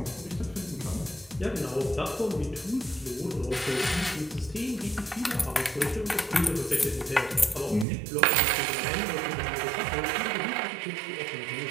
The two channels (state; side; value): drops out; left; at 7.9 s